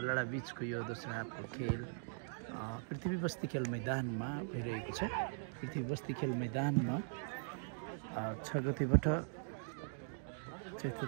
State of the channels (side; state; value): left; silent; digital silence